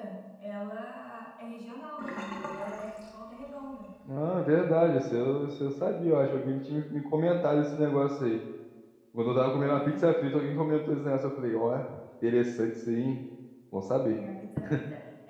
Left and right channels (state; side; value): identical; both; correlation 1.00